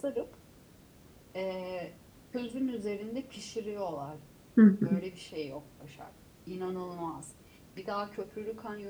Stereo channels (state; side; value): identical; both; correlation 1.00